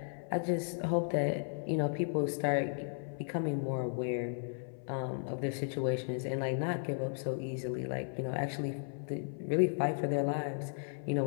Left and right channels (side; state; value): right; silent; 54 dB below the other